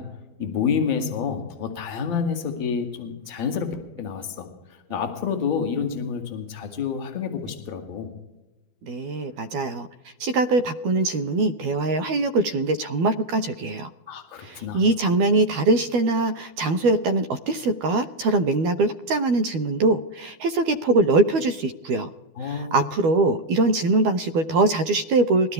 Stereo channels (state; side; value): late; left; 12 ms